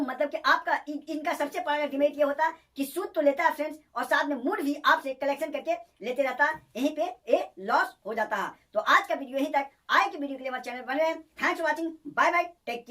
कि आपका इनका सबसे बड़ा डिमेरिट ये होता है कि सूद तो लेता है फ्रेंड्स, और साथ में मूड भी आपसे कलेक्शन करके लेते रहता है। यहीं पे ये लॉस हो जाता है। तो आज का वीडियो यहीं तक। आए कि वीडियो के लिए हमारे चैनल बने रहें। Thanks for watching, bye bye, take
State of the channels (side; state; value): both; identical; correlation 1.00